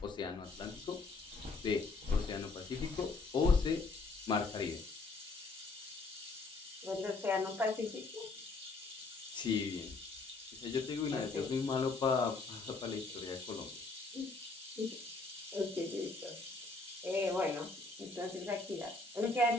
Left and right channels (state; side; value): quieter; right; 3.7 dB